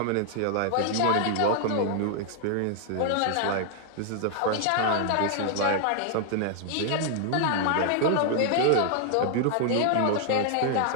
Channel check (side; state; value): both; different; correlation 0.00